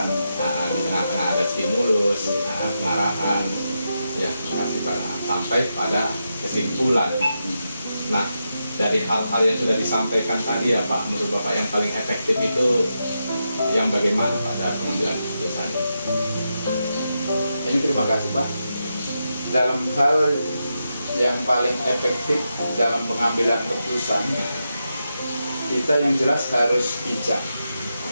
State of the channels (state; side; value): inverted; both; correlation -0.87